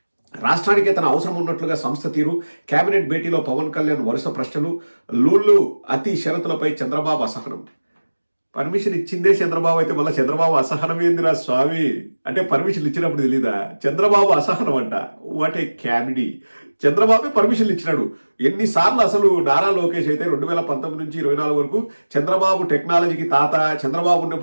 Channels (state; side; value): inverted; both; correlation -1.00